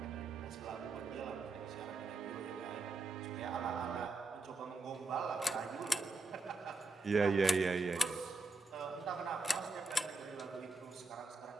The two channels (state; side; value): quieter; left; 3.2 dB